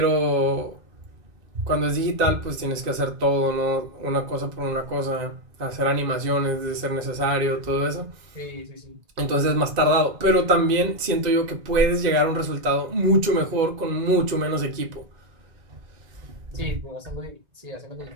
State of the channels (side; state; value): left; late; 2.0 ms